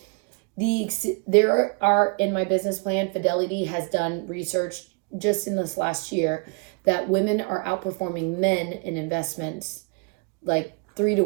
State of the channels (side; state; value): left; quieter; 34.2 dB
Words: there are, in my business plan, Fidelity has done research just in this last year that women are outperforming men in investments, like